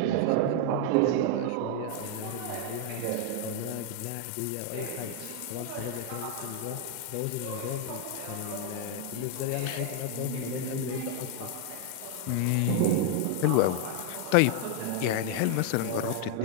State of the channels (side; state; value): both; different; correlation 0.00